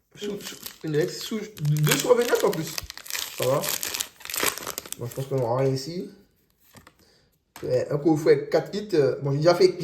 Une ex, deux sur 29 en plus. Ça va. Bon, je pense qu'on aura rien ici. Un coffret 4 hits. Bon, j'ai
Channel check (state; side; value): identical; both; correlation 1.00